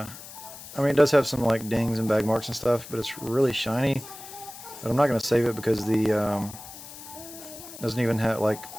mean, it does have some like dings and bag marks and stuff, but it's really shiny. But I'm not going to save it because the doesn't even have, like,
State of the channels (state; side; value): noise; left; hiss, 15 dB below the sound